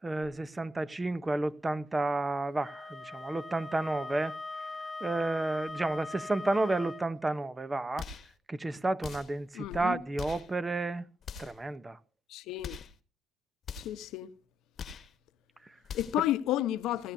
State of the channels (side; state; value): both; normal; correlation 0.82